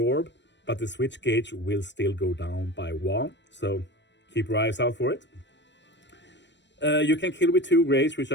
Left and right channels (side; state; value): right; late; 0.52 ms